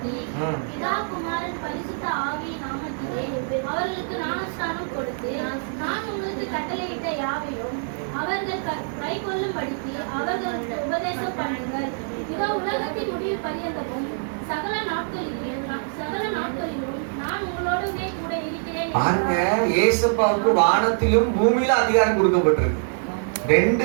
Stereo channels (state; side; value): silent; left; digital silence